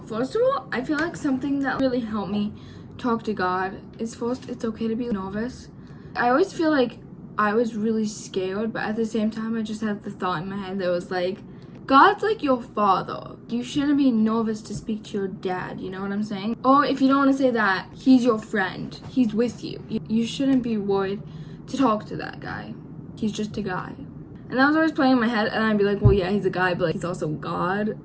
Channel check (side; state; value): both; identical; correlation 1.00